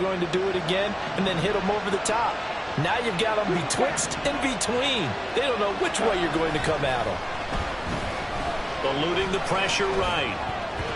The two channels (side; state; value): both; identical; correlation 1.00